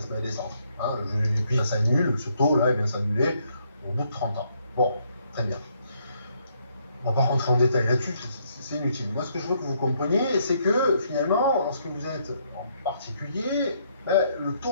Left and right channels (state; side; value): inverted; both; correlation -0.71